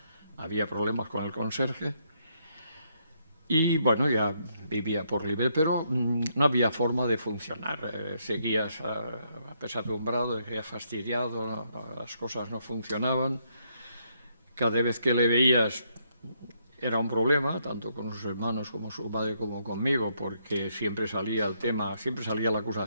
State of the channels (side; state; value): both; inverted; correlation -0.74